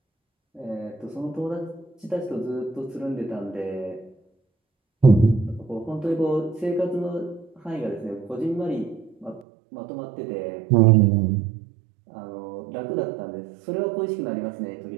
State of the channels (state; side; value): drops out; left; at 9.5 s